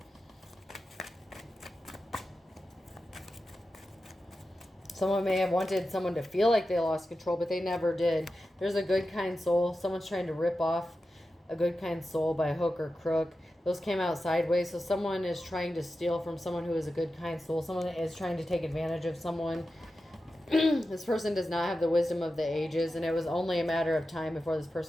Someone may have wanted someone to feel like they lost control, but they never did. There's a good, kind soul. Someone's trying to rip off a good, kind soul by hook or crook. Those came out sideways. So someone is trying to steal from someone who is a good, kind soul. Someone is trying to take advantage of someone. This person does not have the wisdom of the ages, and it was only a matter of time before this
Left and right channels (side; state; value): both; normal; correlation 0.92